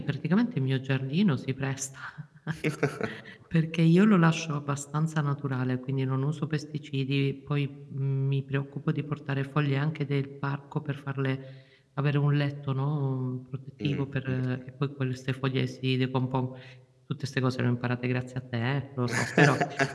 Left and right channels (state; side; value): identical; both; correlation 1.00